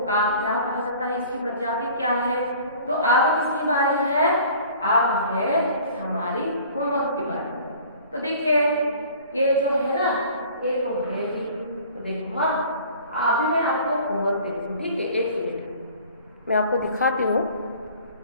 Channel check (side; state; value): both; inverted; correlation -0.48